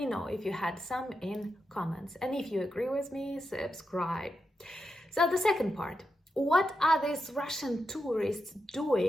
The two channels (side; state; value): both; normal; correlation 0.87